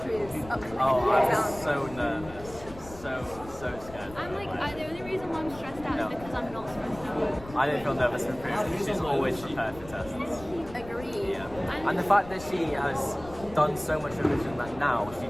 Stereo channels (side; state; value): left; noise; rumble, 17 dB below the sound